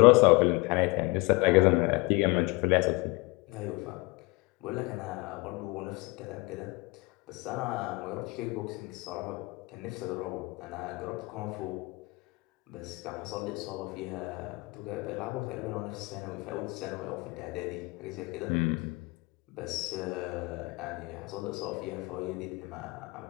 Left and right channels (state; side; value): quieter; right; 24.6 dB